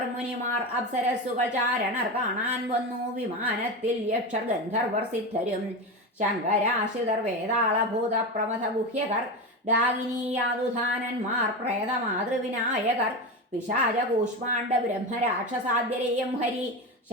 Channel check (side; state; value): both; normal; correlation 0.20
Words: മുനിമാർ അപ്സരസ്സുകൾ ചാരണർ കാണാൻ വന്നു വിമാനത്തിൽ. യക്ഷർ ഗന്ധർവർ സിദ്ധരും ശങ്കരാശ്രിതർ വേതാളഭൂത പ്രമഥ ഗുഹ്യകർ ഡാകിനീയാതുധാനന്മാർ പ്രേതമാതൃവിനായകർ പിശാച കൂഷ്മാണ്ഡ ബ്രഹ്മരാക്ഷസാദ്യരെയും ഹരി